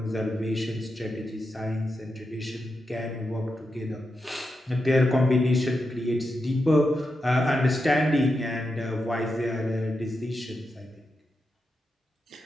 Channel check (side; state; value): both; normal; correlation 0.87